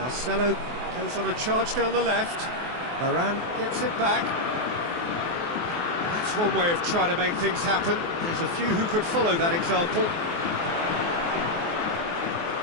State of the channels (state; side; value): late; left; 23 ms